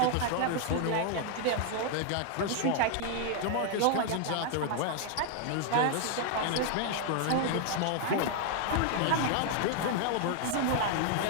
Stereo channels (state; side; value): different; both; correlation 0.00